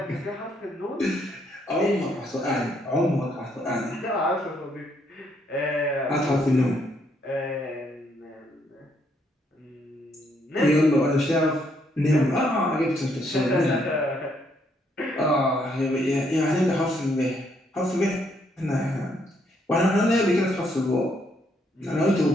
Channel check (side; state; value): both; normal; correlation 0.72